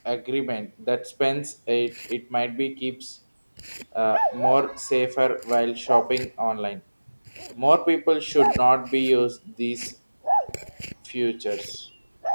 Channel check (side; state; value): both; inverted; correlation -1.00